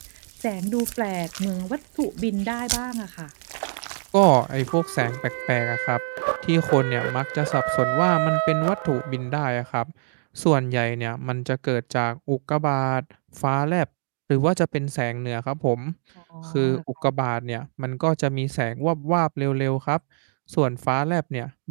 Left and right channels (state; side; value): silent; left; digital silence